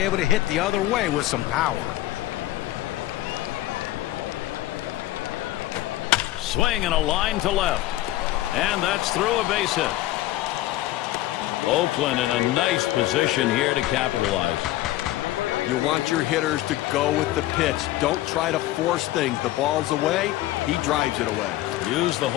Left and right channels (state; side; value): quieter; right; 15.8 dB